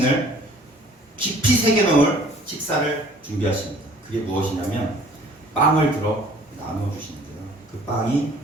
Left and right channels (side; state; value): both; normal; correlation 0.53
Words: 깊이 새겨놓을 식사를 준비하십니다. 그게 무엇이냐면 빵을 들어 나누어 주시는데요. 그 빵이